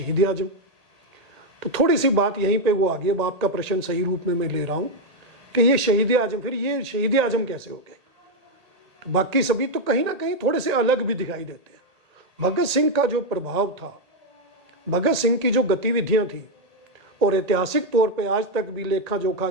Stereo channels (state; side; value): late; left; 1.8 ms